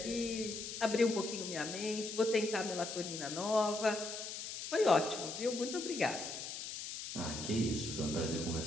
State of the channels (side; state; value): left; noise; hiss, 7 dB below the sound